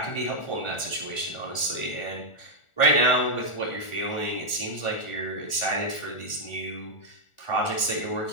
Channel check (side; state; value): right; late; 1.4 ms